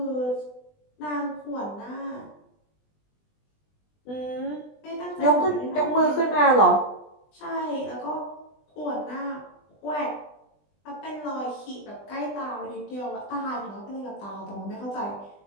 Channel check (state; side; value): late; right; 20 ms